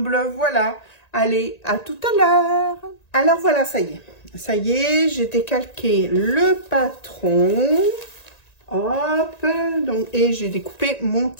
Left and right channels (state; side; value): late; right; 1.9 ms